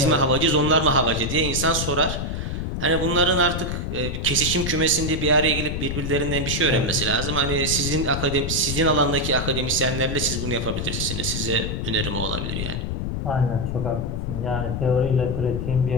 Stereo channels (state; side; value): noise; left; rumble, 3 dB below the sound